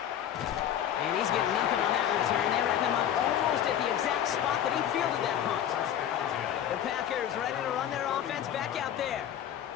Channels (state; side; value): quieter; right; 10.3 dB